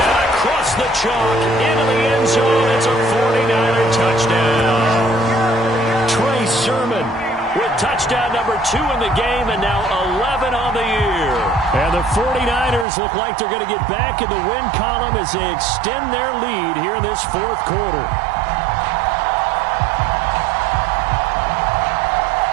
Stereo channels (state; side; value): drops out; left; at 12.9 s